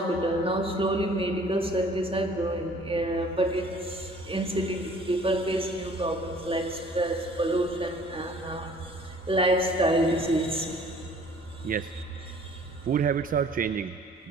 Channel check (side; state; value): both; normal; correlation 0.53